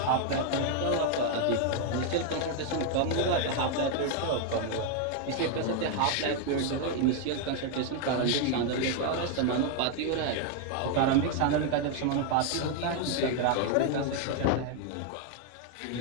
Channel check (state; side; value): different; both; correlation 0.00